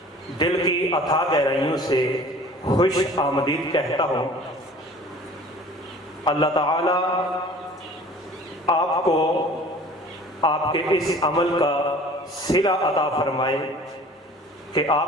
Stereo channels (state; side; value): normal; both; correlation 0.47